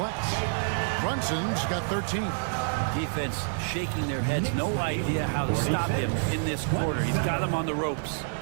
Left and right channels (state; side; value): silent; left; digital silence